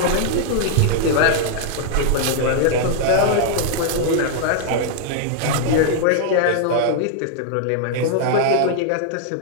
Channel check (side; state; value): both; different; correlation -0.01